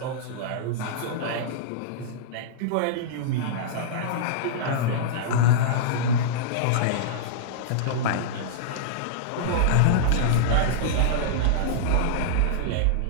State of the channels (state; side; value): different; both; correlation -0.02